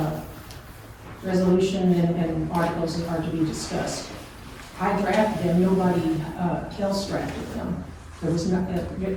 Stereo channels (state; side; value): identical; both; correlation 1.00